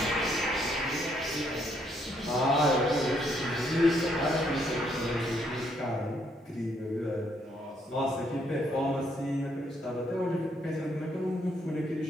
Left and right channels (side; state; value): both; normal; correlation 0.71